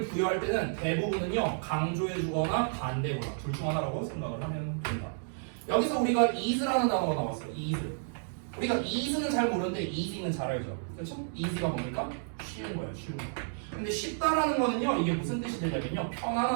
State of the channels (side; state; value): left; silent; digital silence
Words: 부여할 때는 대부분은요, 강조해주거나 반대거나 둘 중 하나라고 생각을 하면 된다. 여기서 우리가 is라는 단어가 나왔어. is. 우리가 is는 잘 모르는데 easy는 잘 알죠. 그렇죠? easy가 뭡니까? 쉬운 거야, 쉬운 거. 근데 쉽다라는 거는요, 이게 무슨 뜻이 되냐면요,